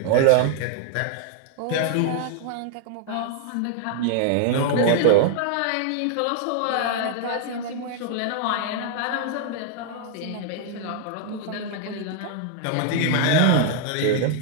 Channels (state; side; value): different; both; correlation 0.00